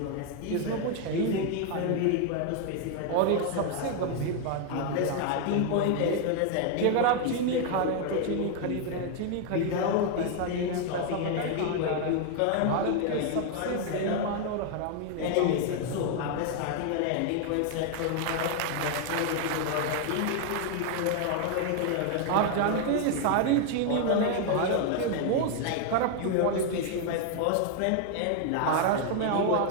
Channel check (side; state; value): both; different; correlation 0.00